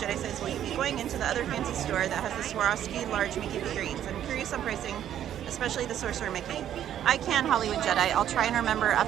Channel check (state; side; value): quieter; left; 10.7 dB